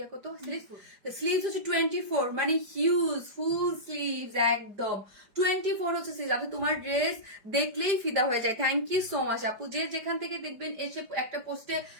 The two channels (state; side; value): late; left; 5.0 ms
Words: কত, স্লিভস হচ্ছে 24, মানে হিউজ ফুল স্লিভস একদম 24 হচ্ছে স্লিভস। আপনি তোমার ড্রেস দেখলেই ফিদা হয়ে যায়। থ্যাংক ইউ সো মাচ আপু, যে যেখান থেকে দেখবেন এসে একটা পোস্টে